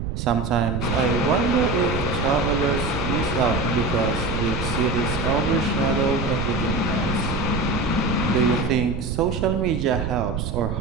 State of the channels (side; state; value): right; noise; rumble, 4 dB below the sound